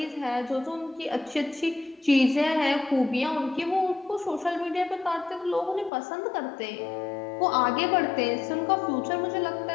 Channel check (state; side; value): drops out; right; at 5.9 s